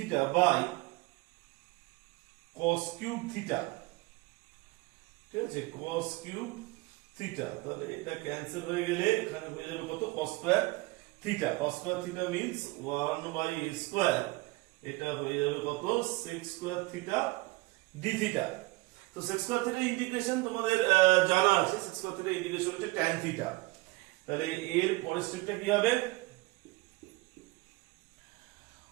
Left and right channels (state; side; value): quieter; left; 22.8 dB